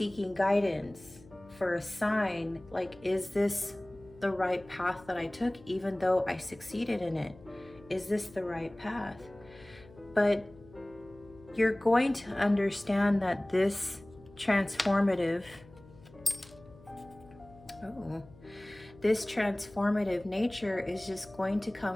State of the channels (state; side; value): noise; left; hum, 23 dB below the sound